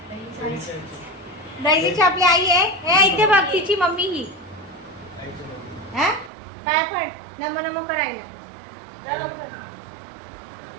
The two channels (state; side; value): drops out; left; at 6.3 s